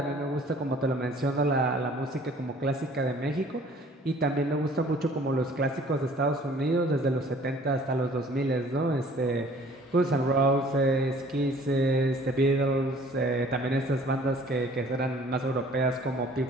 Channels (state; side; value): normal; both; correlation 0.53